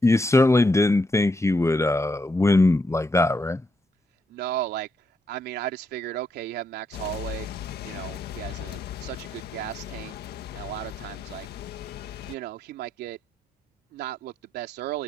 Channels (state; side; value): normal; both; correlation 0.79